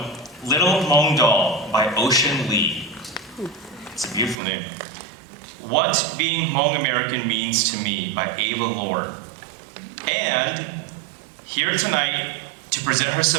Little Hmong Doll by Ocean Lee. It's a beautiful name. What Being Hmong American Means to Me by Ava Lore. And here tonight to present her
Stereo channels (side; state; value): left; drops out; at 4.4 s